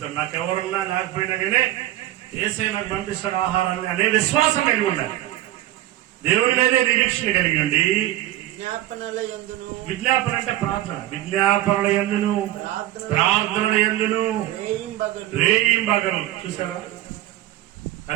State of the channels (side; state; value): left; quieter; 14.8 dB